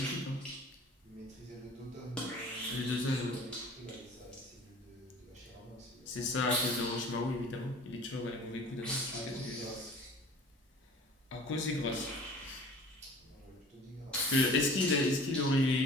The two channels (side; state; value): both; normal; correlation 0.45